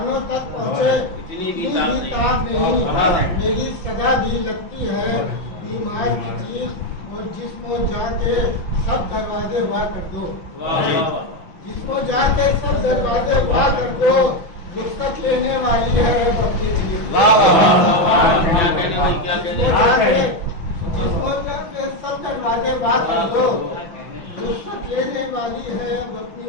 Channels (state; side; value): late; right; 6.0 ms